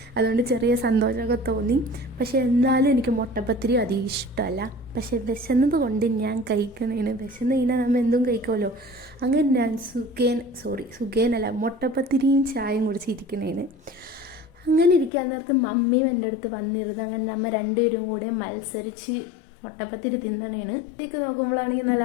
അതുകൊണ്ട് ചെറിയ സന്തോഷമൊക്കെ തോന്നി. പക്ഷേ എന്നാലും എനിക്ക് മുട്ടപ്പത്തിരി അധികം ഇഷ്ടമല്ല. പക്ഷേ വിശന്നത് കൊണ്ട് ഞാൻ കഴിക്കണേന്. വിശന്ന് കഴിഞ്ഞാൽ നമ്മൾ എന്തും കഴിക്കുമല്ലോ. അങ്ങനെ ഞാൻ സുഖേനല്ല മുട്ടപ്പത്തിരിയും ചായയും കുടിച്ചിരിക്കണേന്. അങ്ങനെ ഇരിക്കാൻ നേരത്ത് മമ്മിയും എൻ്റെ അടുത്ത് വന്നിരുന്നു. അങ്ങനെ നമ്മൾ രണ്ടുപേരും കൂടെ മത്സരിച്ച് മുട്ടപ്പത്തിരി തിന്നണേണ്. ഇതിലേക്ക് നോക്കുമ്പോഴാണെങ്കിൽ നല്ല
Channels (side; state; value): right; drops out; at 15.1 s